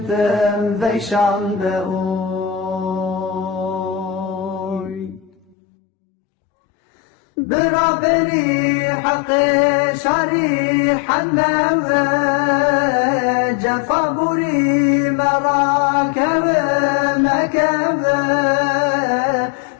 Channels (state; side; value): drops out; right; at 5.6 s